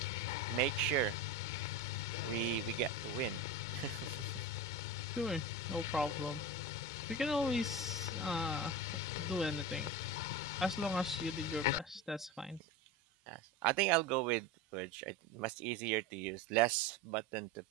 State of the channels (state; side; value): normal; both; correlation 0.26